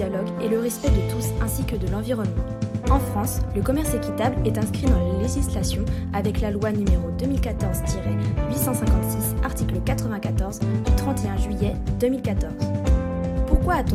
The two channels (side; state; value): both; identical; correlation 1.00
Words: et le respect de tous ainsi que de l'environnement. En France, le commerce équitable est inscrit dans la législation avec la loi numéro 2014-856, article 94 du 31 juillet 2014. Pourquoi